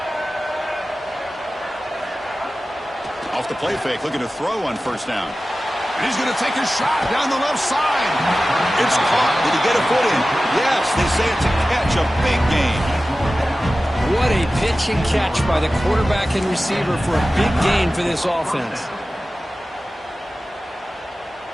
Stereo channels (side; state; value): both; normal; correlation 0.95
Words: Off the play fake, looking to throw on 1st down. And he's going to take a shot down the left side. It's caught. Did he get a foot in? Yes, they say it's a catch, a big gain. What a pitch and catch by the quarterback and receiver for a big gain for this offense.